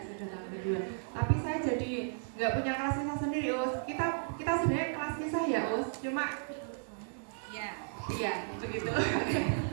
tahun kedua. Tapi saya jadi nggak punya kelas kisah sendiri Us. Kita sebenarnya kelas kisah ya Us, cuma ya begitu.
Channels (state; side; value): silent; left; digital silence